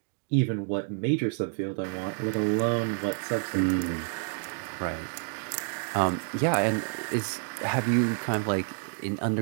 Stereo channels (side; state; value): left; silent; 59 dB below the other